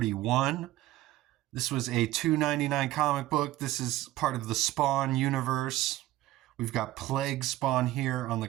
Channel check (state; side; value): quieter; left; 15.9 dB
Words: This was a $2.99 comic book. This is part of the Spawn universe. We've got Plague Spawn here on the